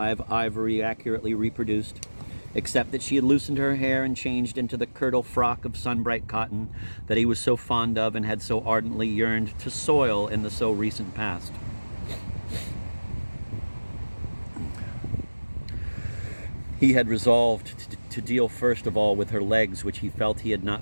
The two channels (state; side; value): inverted; both; correlation -1.00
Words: ivory accurately reproduced, except that she had loosened her hair and changed into the kirtle frock of sun-bright cotton that he was so fond of and had so ardently yearned to soil in the so recent past. He had resolved to deal first of all with her legs, which he felt he had